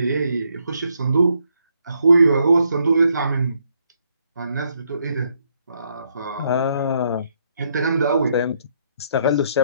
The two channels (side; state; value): both; inverted; correlation -0.74